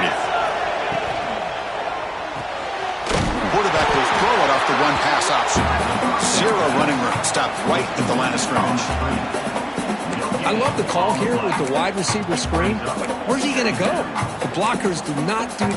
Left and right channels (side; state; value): both; identical; correlation 1.00